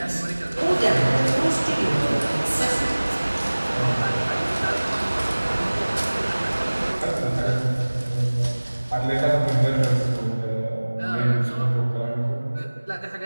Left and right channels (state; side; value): inverted; both; correlation -1.00